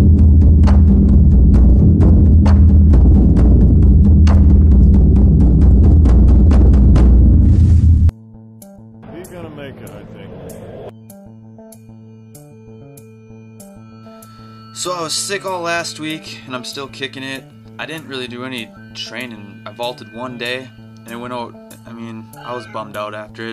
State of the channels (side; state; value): both; identical; correlation 1.00